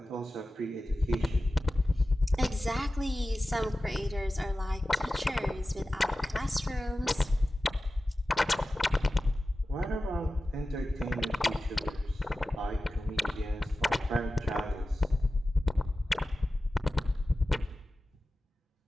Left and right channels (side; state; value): both; normal; correlation 0.95